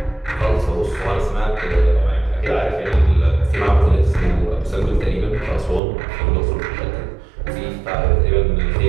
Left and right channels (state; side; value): drops out; left; at 5.8 s